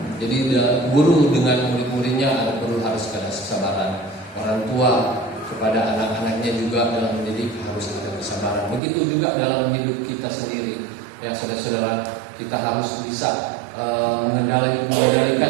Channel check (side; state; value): left; drops out; at 8.8 s